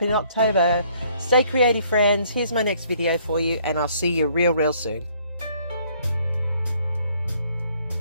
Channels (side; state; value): both; inverted; correlation -0.63